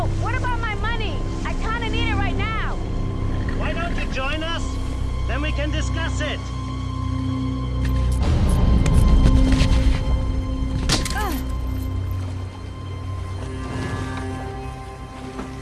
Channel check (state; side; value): identical; both; correlation 1.00